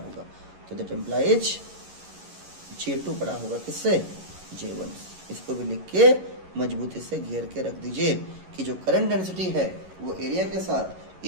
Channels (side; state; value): left; late; 11 ms